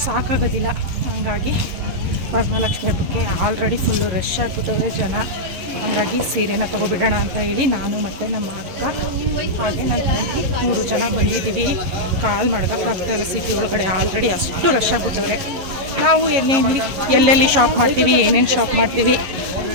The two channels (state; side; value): late; left; 11 ms